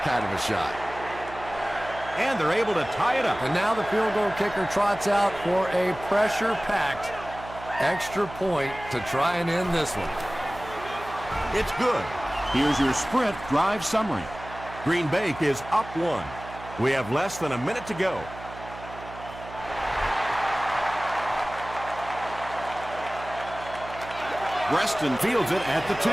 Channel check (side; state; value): right; noise; hum, 14 dB below the sound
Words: kind of a shot. And they're able to tie it up. And now the field goal kicker trots out for a pressure-packed extra point to try and end this one. It's good. Here's your Sprint drive summary. Green Bay is up 1. We have less than a minute to go. Reston fields it at the 2.